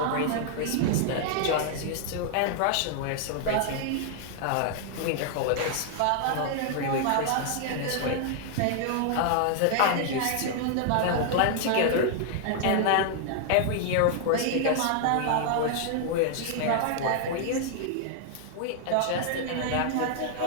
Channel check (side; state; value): both; different; correlation 0.00